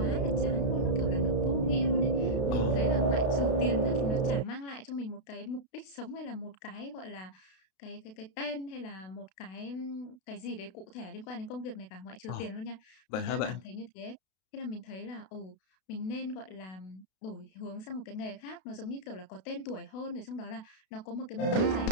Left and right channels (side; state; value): right; late; 32 ms